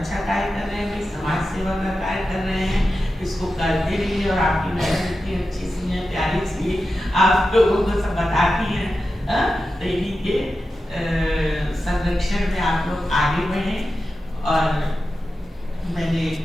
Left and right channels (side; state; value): both; normal; correlation 0.92